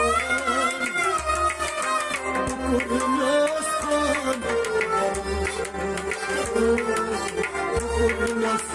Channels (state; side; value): identical; both; correlation 1.00